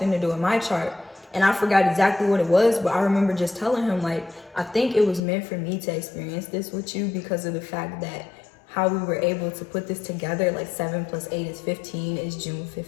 to do with my chart. And I forgot exactly what it was, but I remember just telling him, like, I think it was meant for me to experience this with you because of the fact that how we were able to put this together, like 7 plus 8 is 15, is June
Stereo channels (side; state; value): right; drops out; at 5.2 s